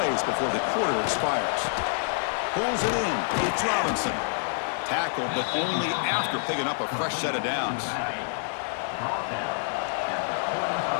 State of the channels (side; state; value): right; silent; digital silence